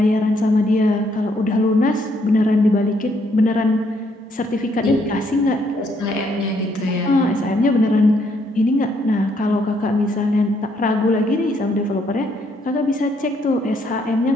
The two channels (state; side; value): normal; both; correlation 0.71